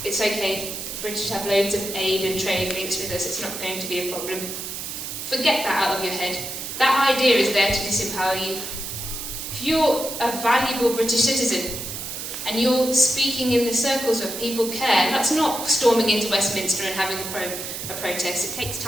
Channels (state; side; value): noise; right; hiss, 7 dB below the sound